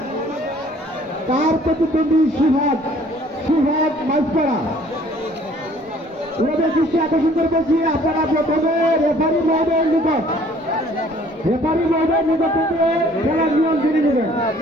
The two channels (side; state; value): both; normal; correlation 0.56